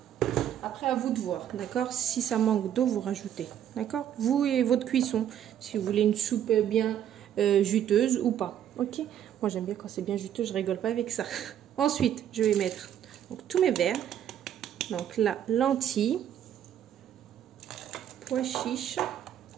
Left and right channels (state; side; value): quieter; left; 10.2 dB